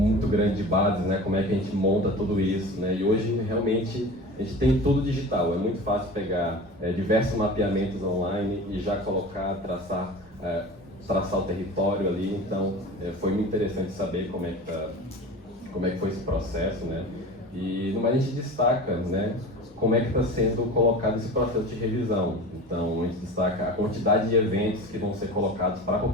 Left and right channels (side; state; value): both; normal; correlation 0.34